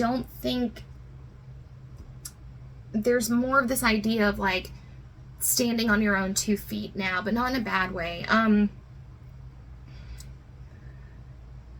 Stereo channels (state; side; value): identical; both; correlation 1.00